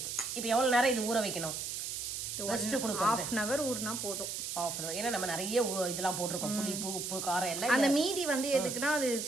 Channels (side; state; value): right; noise; hiss, 4 dB below the sound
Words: இப்போ எவ்வளவு நேரம் இது ஊற வைக்கணும்? ரெஸ்ட் கொடுக்கணும். 1/2 hour ஊறினா போதும். 1/2 hour. ஏன்னா நம்ம நிறைய இதெல்லாம் போட்டிருக்கோம், புளிப்பு உப்பு காரம் எல்லாம். அந்த மீதி வந்து எதுக்குன்னா அது